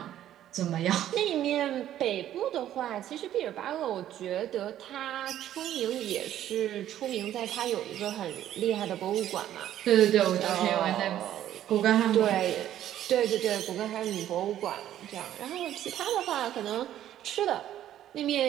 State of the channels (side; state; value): left; quieter; 11.9 dB